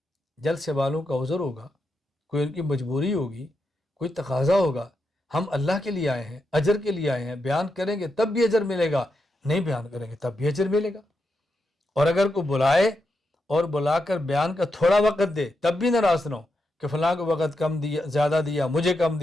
جلسے والوں کا عذر ہوگا، کوئی ان کی مجبوری ہوگی، کوئی تقاضا ہوگا. ہم اللہ کے لیے آئے ہیں، اجر کے لیے آئے ہیں. بیان کریں گے تب بھی اجر ملے گا، نہیں بیان کریں گے تب بھی اجر ملے گا. اور اگر کوئی بلائے اور بلا کر بیان کا تھوڑا وقت دے تب بھی ناراض نہ ہو کہ فلاں کو وقت کم دیا، زیادہ دیا، مجھے کم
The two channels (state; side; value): normal; both; correlation 0.85